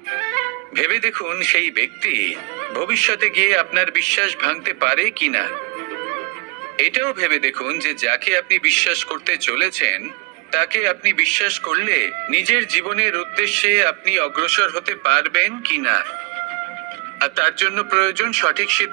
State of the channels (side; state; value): left; quieter; 29.8 dB